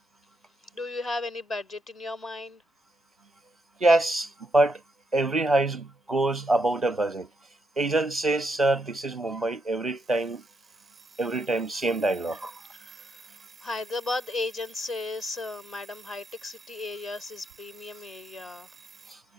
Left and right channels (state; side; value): normal; both; correlation 0.79